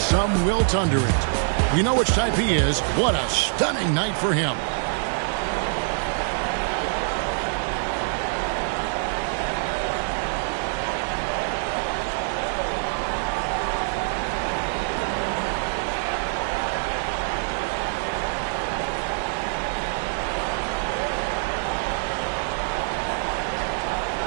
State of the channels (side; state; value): left; silent; digital silence